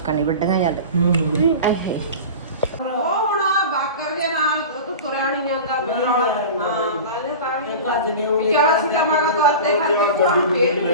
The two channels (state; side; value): inverted; both; correlation -0.32